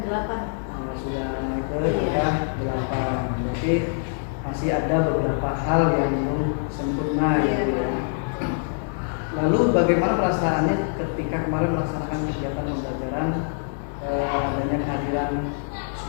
8. Sudah naik ke Iya. angka 8. Berarti masih ada beberapa hal yang belum sempurna Iya, gitu ya. Pak. Lalu bagaimana perasaannya ketika kemarin melaksanakan kegiatan pembelajaran adanya kehadiran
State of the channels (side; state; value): right; silent; digital silence